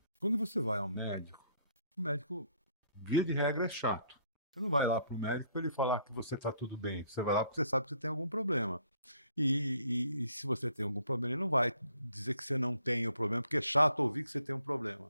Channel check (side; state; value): both; inverted; correlation -0.65